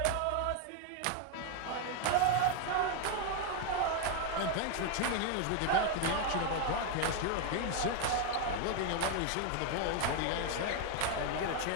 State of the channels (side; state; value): both; different; correlation 0.01